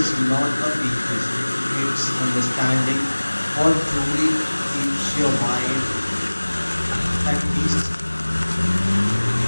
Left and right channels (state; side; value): inverted; both; correlation -1.00